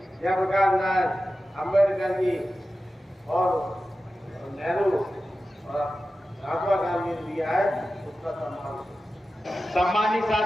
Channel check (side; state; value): both; normal; correlation 0.94